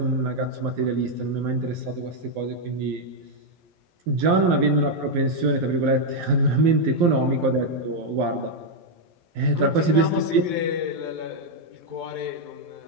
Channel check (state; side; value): late; left; 12 ms